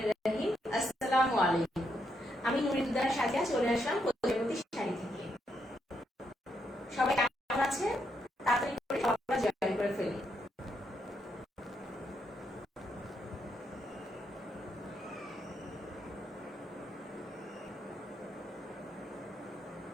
রহিম। আসসালামু আলাইকুম। আমি নুরিদুদ্দার সাথে চলে আসলাম প্রজাপতি শাড়ি থেকে। সবাই কেমন আছেন? তাড়াতাড়ি করে সবাই জয়েন করে ফেলি।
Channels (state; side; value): normal; both; correlation 0.79